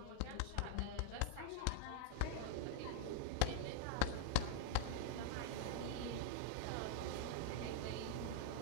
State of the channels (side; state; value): both; different; correlation -0.01